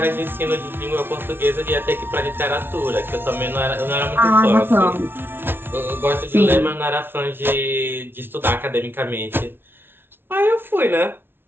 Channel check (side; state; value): left; late; 0.11 ms